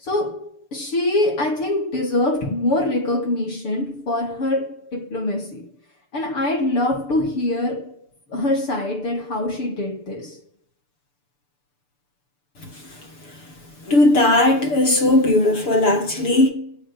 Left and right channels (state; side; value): late; right; 6.9 ms